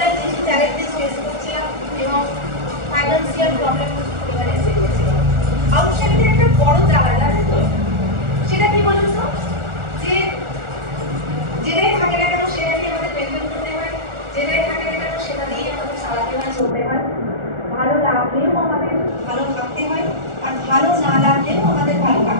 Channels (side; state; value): left; late; 1.4 ms